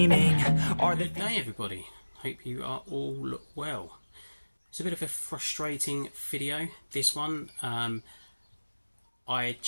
are the... Good day everybody, hope you are all well. It's a bit of a frustrating video, this one. I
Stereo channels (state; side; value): inverted; both; correlation -1.00